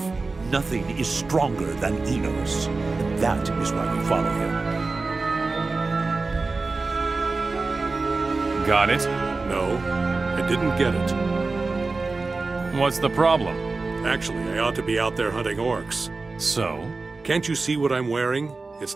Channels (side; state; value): left; quieter; 3.8 dB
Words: Nothing is stronger than Enos, and that is why we follow him. Got it? No, I didn't get it. What's the problem? Actually, I ought to be out there hunting orcs. So? Can't you see what I'm wearing?